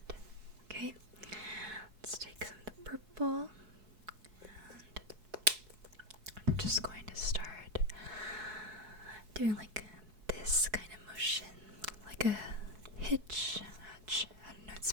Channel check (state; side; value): late; left; 4.7 ms